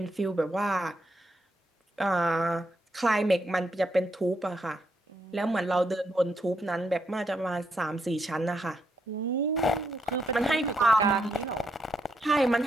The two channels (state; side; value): normal; both; correlation 0.78